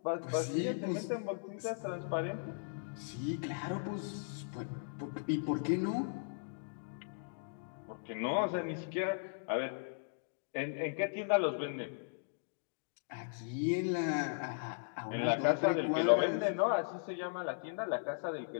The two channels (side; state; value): right; silent; digital silence